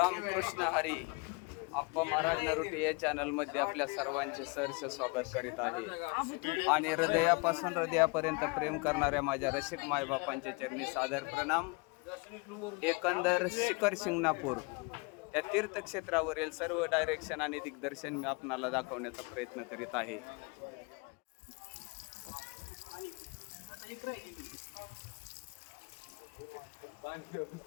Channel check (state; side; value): quieter; right; 30.0 dB